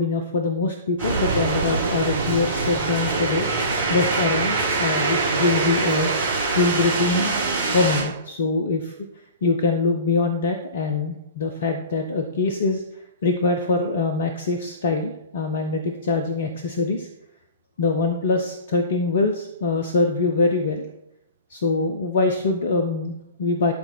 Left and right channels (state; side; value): inverted; both; correlation -0.37